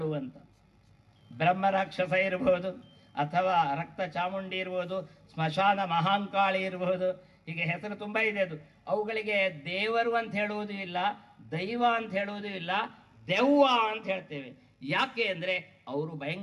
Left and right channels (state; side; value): identical; both; correlation 1.00